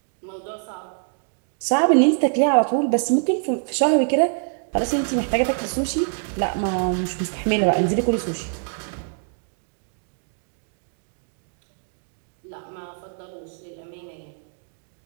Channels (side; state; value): left; silent; 62 dB below the other